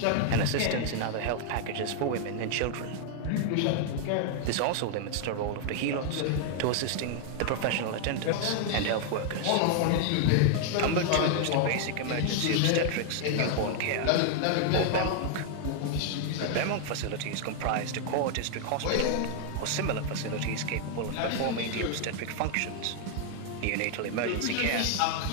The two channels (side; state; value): both; different; correlation 0.00